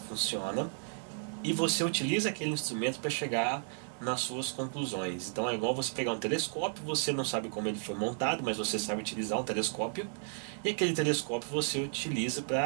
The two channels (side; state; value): left; silent; 56 dB below the other